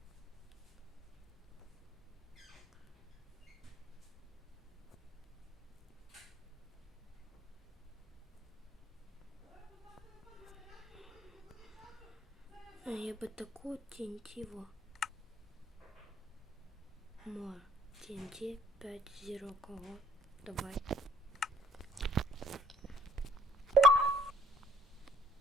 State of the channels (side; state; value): both; normal; correlation 0.58